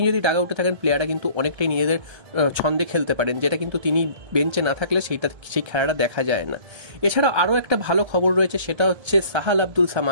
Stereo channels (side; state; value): left; late; 1.3 ms